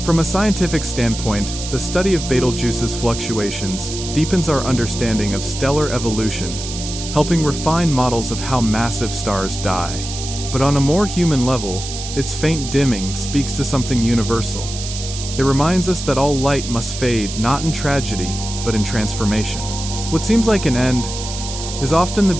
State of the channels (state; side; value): noise; right; hiss, 8 dB below the sound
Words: From a scientific standpoint, the study of Betelgeuse's fluctuations deepens our understanding of stellar evolution, helping refine models of how massive stars die. But on a more human level, its faint dimming speaks to something universal. It reminds us that all light must fade not in tragedy, but in transformation. What seems like an end is often the